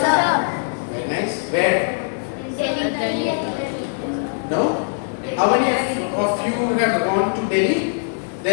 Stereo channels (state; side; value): silent; right; digital silence